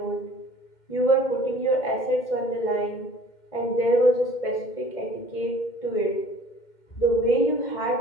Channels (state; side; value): late; right; 2.1 ms